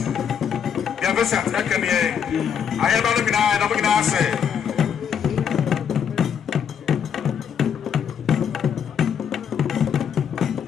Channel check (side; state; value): right; quieter; 7.9 dB